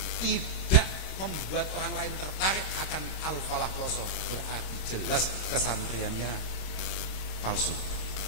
tidak membuat orang lain tertarik akan Al-Falah Peloso, berarti jelas kesantriannya palsu.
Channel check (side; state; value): right; late; 26 ms